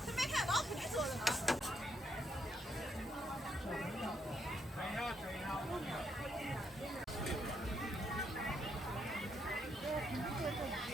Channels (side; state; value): both; normal; correlation 0.76